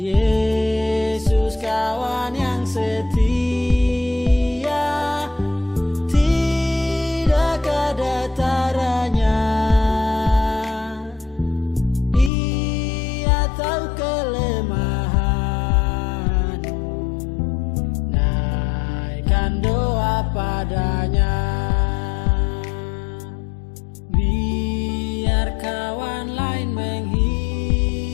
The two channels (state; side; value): drops out; right; at 12.3 s